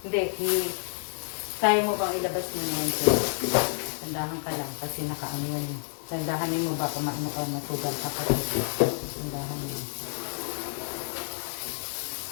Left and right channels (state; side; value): silent; right; digital silence